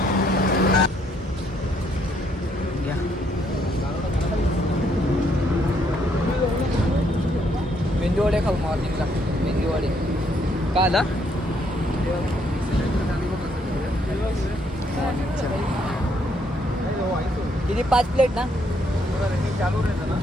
मेंदूवडे खाऊ मॉर्निंगला मेंदूवडे का आला किती 5 प्लेट ना चालू रहता ना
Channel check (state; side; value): normal; both; correlation 0.71